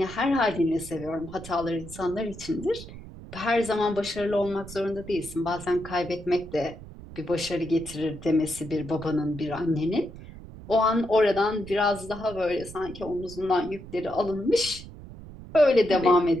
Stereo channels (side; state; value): right; noise; rumble, 15 dB below the sound